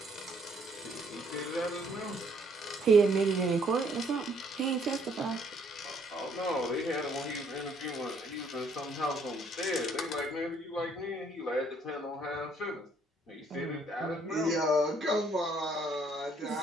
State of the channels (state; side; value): normal; both; correlation 0.66